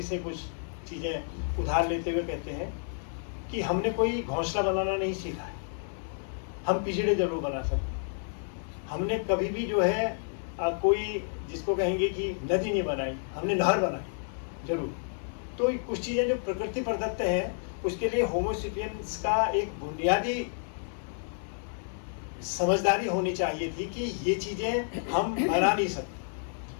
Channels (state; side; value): silent; right; 58 dB below the other